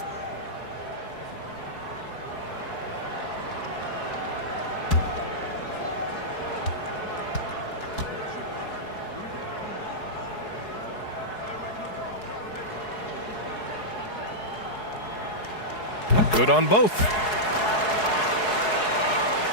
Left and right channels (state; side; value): late; right; 4.7 ms